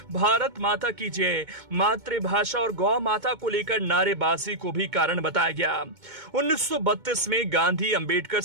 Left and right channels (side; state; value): left; late; 2.2 ms